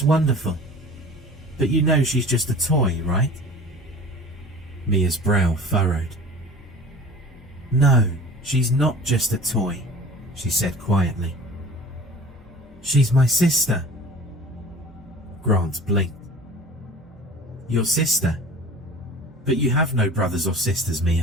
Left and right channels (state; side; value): normal; both; correlation 0.42